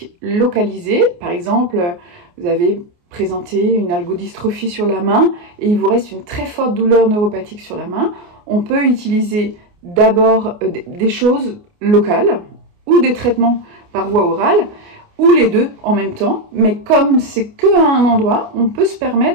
localisée, par exemple, vous avez présenté une algodystrophie sur la main et il vous reste une très forte douleur neuropathique sur la main, on peut utiliser d'abord des choses locales ou des traitements par voie orale, ou les deux en même temps, mais comme c'est que à un endroit, on peut se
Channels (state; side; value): late; left; 29 ms